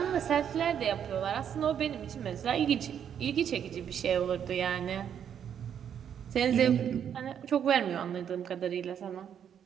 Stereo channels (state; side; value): quieter; left; 8.7 dB